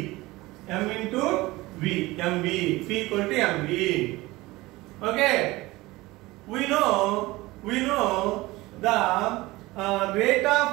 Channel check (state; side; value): quieter; left; 20.1 dB